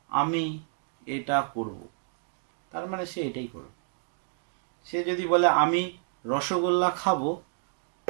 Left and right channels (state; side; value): silent; left; digital silence